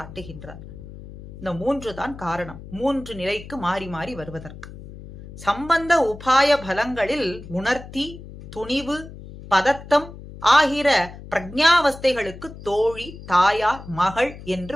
இந்த 3 தான் காரணம், 3 நிலைக்கு மாறி மாறி வருவதற்கு. சம்பந்த உபாய பலங்களில் உணர்த்தி, துணிவு, பதத்தம் ஆகிற பிரஜாவஸ்தைகளுக்கு தோழி, தாயார், மகள்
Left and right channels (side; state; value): left; noise; hum, 15 dB below the sound